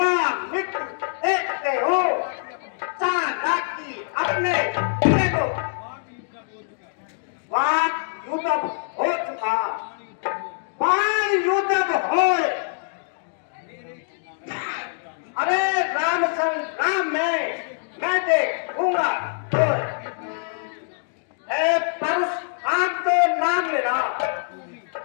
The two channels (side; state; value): right; silent; digital silence